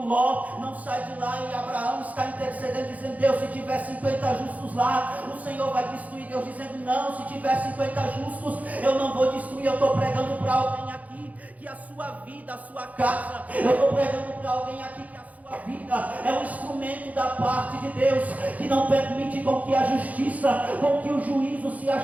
não sai de lá, e Abraão está intercedendo dizendo: Deus, se tiver 50 justos lá, o Senhor vai destruir. Deus dizendo: não, se tiver 50 justos eu não vou destruir. Eu estou pregando para alguém aqui que a sua vida, a sua casa, eu estou pregando para alguém aqui que a sua vida é um instrumento da parte de Deus, que não permite com que a justiça, com que o juízo se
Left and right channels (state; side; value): late; left; 0.075 ms